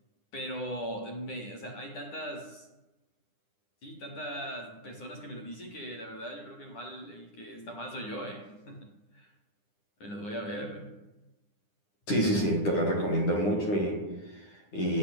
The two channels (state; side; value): late; right; 9.9 ms